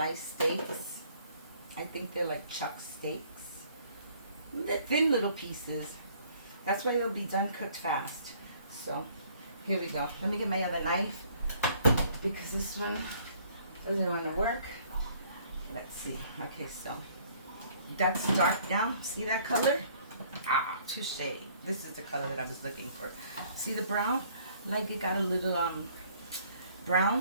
steaks. I think they're like chuck steaks. They're thin little pieces. That's why they'll be done cooked fast. So here we go. Let me get my other knife because this one doesn't want to work. Let's see. Okay, so that's dark now. See that color? Ah, touche. This is the color that I was looking for. See the brown? Like it got a little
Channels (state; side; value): inverted; both; correlation -0.60